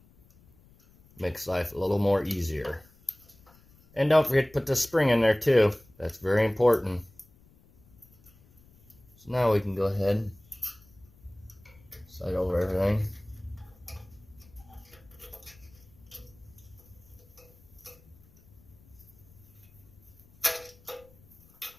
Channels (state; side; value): noise; left; rumble, 27 dB below the sound